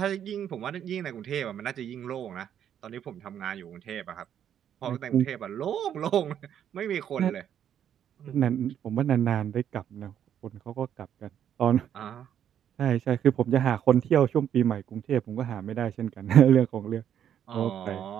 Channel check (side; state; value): left; quieter; 9.5 dB